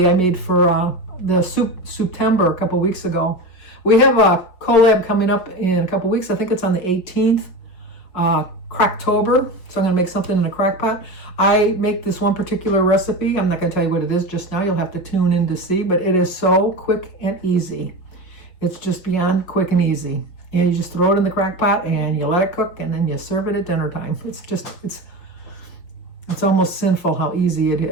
I made for the September a couple weeks ago. We have a collab coming up in a couple weeks. I think it's on the 18th, Cracktober. So I'm going to make something in a crock pot. I make this one particular recipe. I'm not going to tell you what it is just now. You'll have to tune in to see. But it is so quick and easy. It's just beyond quick and easy. And you just throw it in the crock pot and you let it cook and then you serve it at dinner time. It's almost sinful how easy it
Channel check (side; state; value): right; late; 5.7 ms